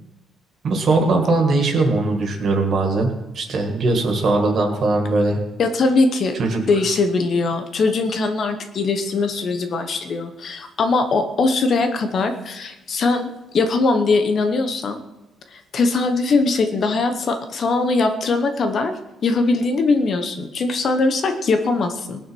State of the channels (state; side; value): normal; both; correlation 0.75